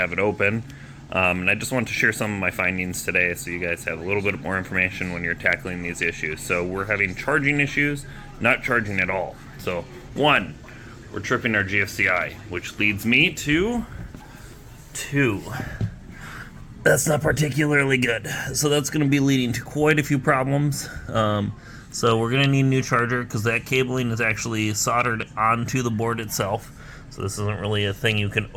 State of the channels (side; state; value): both; identical; correlation 1.00